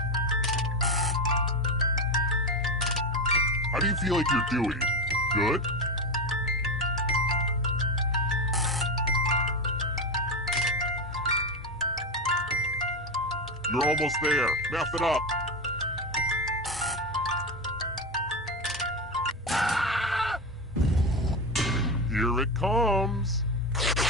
How do you feel like you're doing? Good? You're almost there. Math it up. Here it comes.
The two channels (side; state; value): both; normal; correlation 0.17